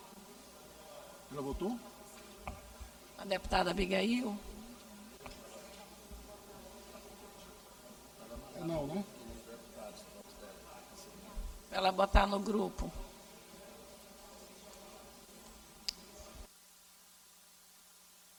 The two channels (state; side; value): identical; both; correlation 1.00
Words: Já votou? A deputada Abigail? Não, né? Para ela botar no grupo.